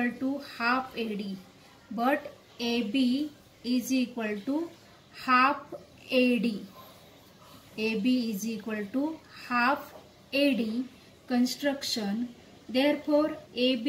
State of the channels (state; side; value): identical; both; correlation 1.00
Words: to half AD, but AB is equal to half AD, AB is equal to half AD, construction. Therefore